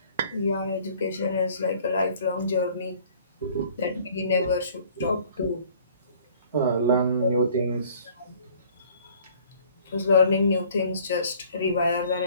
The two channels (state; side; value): inverted; both; correlation -0.55